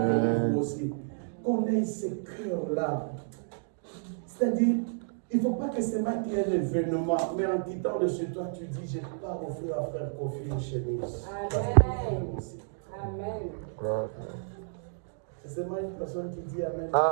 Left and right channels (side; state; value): left; silent; digital silence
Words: Vous aussi. Qu'on ait ces cœurs-là. C'est-à-dire, il ne faut pas que c'est moi qui ait l'événement, mais en quittant de chez toi, tu dis, je pars offrir à frère Kofi une chemise. Amen. Amen. C'est moi une personne qui dit Amen.